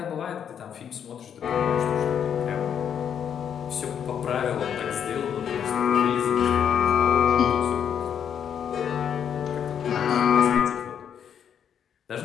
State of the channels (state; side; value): quieter; right; 8.4 dB